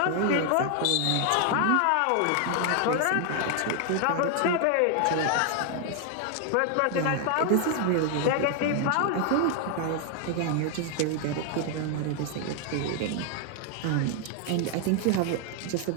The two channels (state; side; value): different; both; correlation 0.00